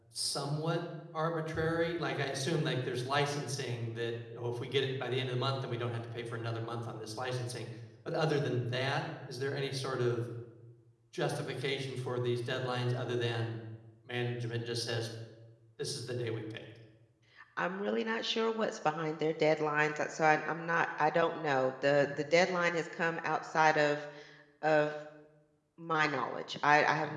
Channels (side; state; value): both; identical; correlation 1.00